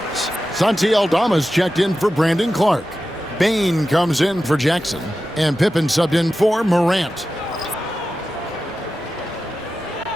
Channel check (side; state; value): both; normal; correlation 0.92